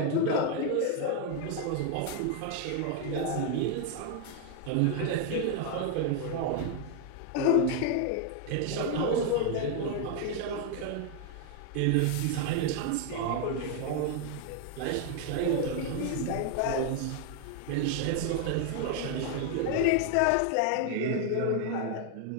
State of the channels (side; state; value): both; different; correlation 0.00